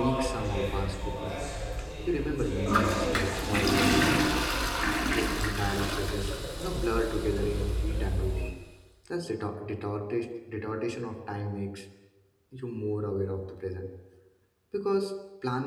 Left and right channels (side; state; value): both; identical; correlation 1.00